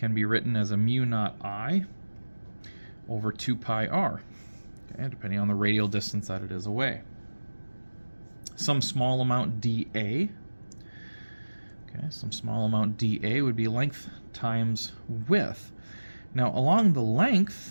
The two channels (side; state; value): both; inverted; correlation -1.00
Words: be written as a mu naught I over 2 pi r, okay, depending on the radial distance that it is away. Some small amount dA, okay, some small amount dA would be length times width. Now along the